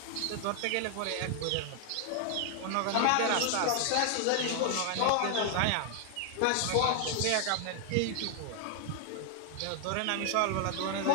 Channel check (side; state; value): both; different; correlation 0.00